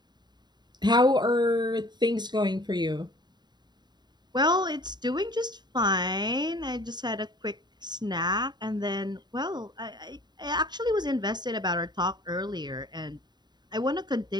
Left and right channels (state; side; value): late; left; 0.21 ms